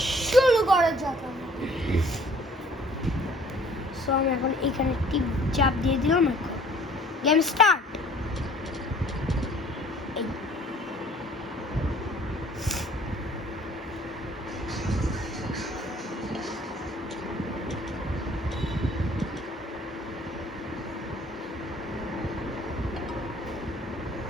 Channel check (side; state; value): both; normal; correlation 0.55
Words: শুরু করা যাক। সো আমি এখন এখানে টিপ চাপ দিয়ে দিলাম, গেম স্টার্ট।